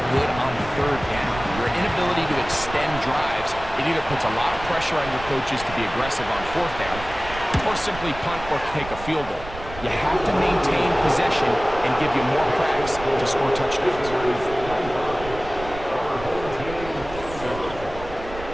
good on 3rd down. Your inability to extend drives, it either puts a lot of pressure on your coaches to be aggressive on 4th down, or simply punt or take a field goal. You have to maintain possession and give you more cracks to score touchdowns.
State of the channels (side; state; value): right; noise; rumble, 13 dB below the sound